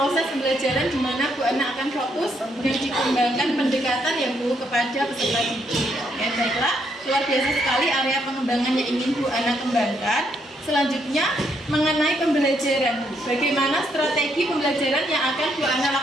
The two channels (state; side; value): normal; both; correlation 0.74